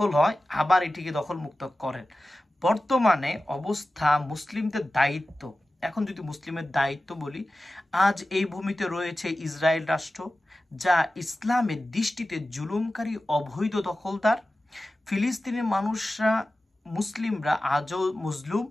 হয়, আবার এটিকে দখলমুক্ত করেন। বর্তমানে অবস্থা মুসলিমদের দায়িত্ব। এখন যদি মুসলিমের দায়িত্ব বলি, আজ এই ভূমিতে রয়েছে ইসরায়েল রাষ্ট্র, যা ইসলামের দৃষ্টিতে জুলুমকারী অবৈধ দখলদার। ফিলিস্তিনের মানুষরা, মুসলিমরা আজও মজলুম।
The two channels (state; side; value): normal; both; correlation 0.95